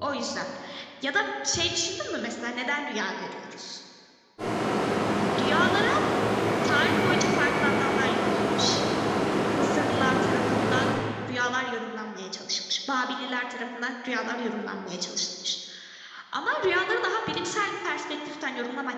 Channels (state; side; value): identical; both; correlation 1.00